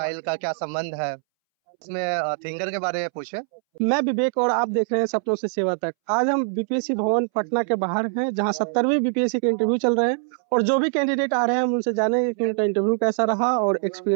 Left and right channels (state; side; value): silent; left; 63 dB below the other